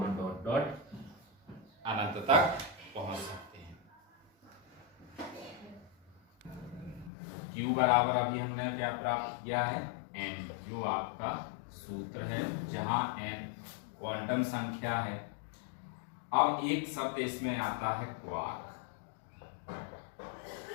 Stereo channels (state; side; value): drops out; right; at 7.1 s